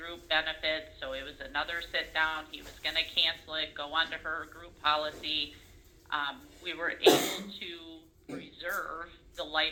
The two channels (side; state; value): both; identical; correlation 1.00